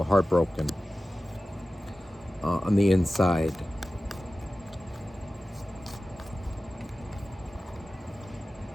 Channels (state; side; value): normal; both; correlation 0.95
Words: heartbroken on the inside.